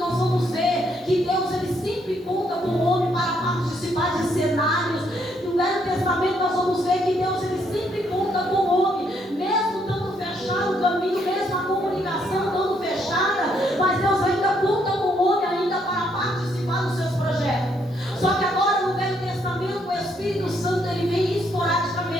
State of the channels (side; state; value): both; normal; correlation 0.72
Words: vamos ver que Deus ele sempre conta com o homem para participar de cenários. No Velho Testamento nós vamos ver que Deus ele sempre conta com o homem, mesmo estando fechado o caminho, mesmo a comunicação estando fechada, mas Deus ainda conta com o homem ainda para participar dos seus projetos. Só que agora no Velho Testamento o Espírito Santo ele vem